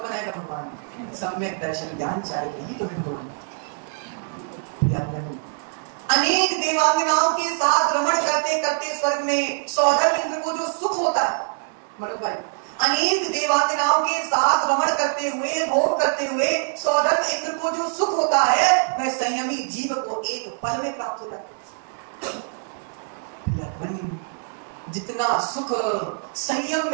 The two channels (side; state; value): left; silent; 63 dB below the other